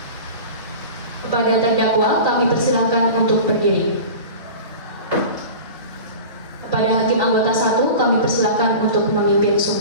Kepada terdakwa kami persilahkan untuk berdiri. Kepada hakim anggota 1 kami persilahkan untuk memimpin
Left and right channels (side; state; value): both; inverted; correlation -0.35